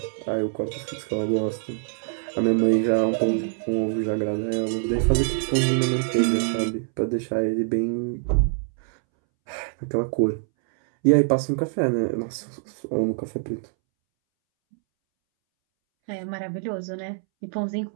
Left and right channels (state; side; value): silent; left; 62 dB below the other